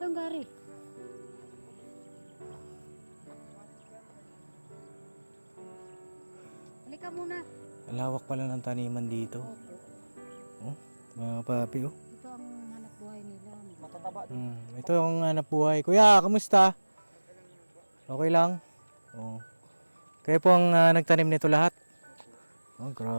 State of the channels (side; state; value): both; inverted; correlation -1.00